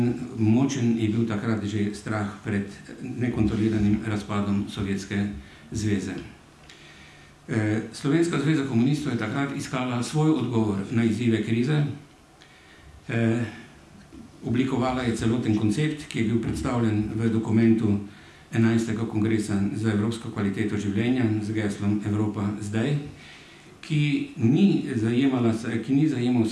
močen je bil takrat že strah pred nekontroliranim razpadom Sovjetske zveze. Slovenska zveza komunistov je takrat iskala svoj odgovor na izzive krize. Oblikovala je celoten koncept, ki je bil predstavljen v dokumentu 11. kongresa za evropsko kvaliteto življenja z geslom Evropa zdaj, ki ni zajemal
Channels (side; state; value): both; identical; correlation 1.00